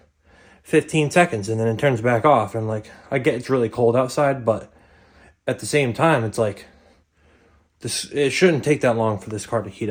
15 seconds and then it turns back off. And like, I get it's really cold outside, but at the same time, it's like it shouldn't take that long for this car to heat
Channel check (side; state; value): both; identical; correlation 1.00